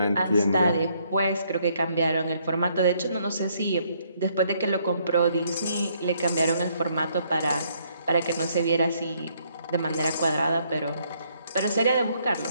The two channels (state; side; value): inverted; both; correlation -0.70